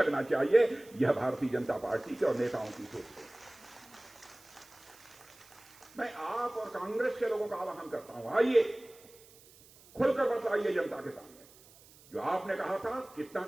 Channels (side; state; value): right; noise; hiss, 24 dB below the sound